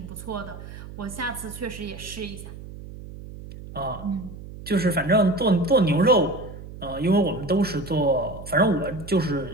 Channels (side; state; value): right; noise; hum, 13 dB below the sound